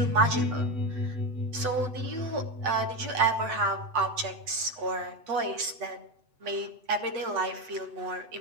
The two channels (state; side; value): late; left; 8.0 ms